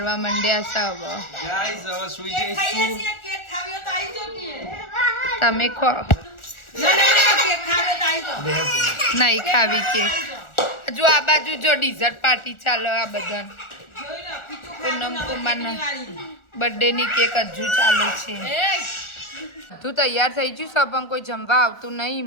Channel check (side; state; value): right; late; 1.4 ms